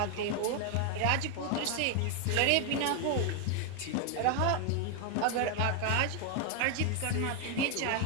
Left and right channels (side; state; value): both; different; correlation 0.01